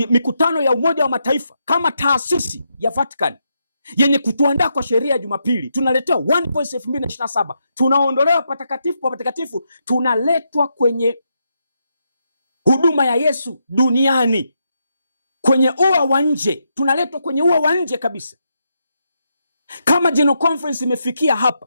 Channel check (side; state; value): both; inverted; correlation -0.82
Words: mikutano ya Umoja wa Mataifa kama taasisi ya Vatican, yenye kutuandaa kwa sheria ya Jumapili. Tunaletewa One Voice 2027, tunaondolewa patakatifu pa patakatifu, tunaletwa kwenye huduma ya Yesu duniani, kwenye ua wa nje, tunaletwa kwenye ua wa nje kabisa. Kama General Conference imefikia hapa,